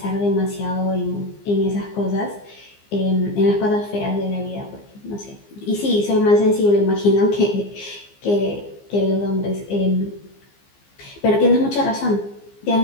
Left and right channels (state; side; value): late; right; 15 ms